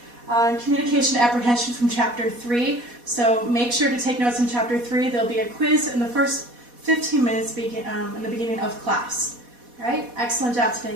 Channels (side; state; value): left; late; 4.1 ms